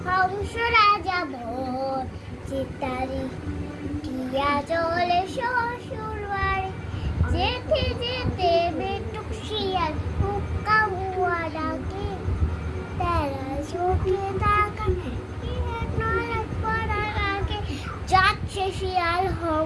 হংস রাজা ভোর চিতারি টিয়া চলে শ্বশুর বাড়ি, যেতে যেতে বেটুক শিয়াল হুক্কা হুয়া ডাকে, তেরা চোখে তাকাই টিয়া নালক পড়া নাকে, যাচ্ছে শিয়াল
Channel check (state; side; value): identical; both; correlation 1.00